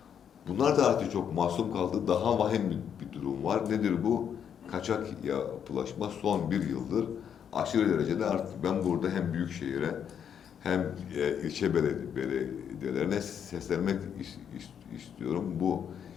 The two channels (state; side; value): quieter; right; 8.3 dB